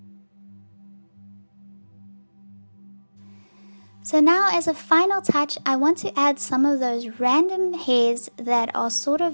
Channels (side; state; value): both; inverted; correlation -1.00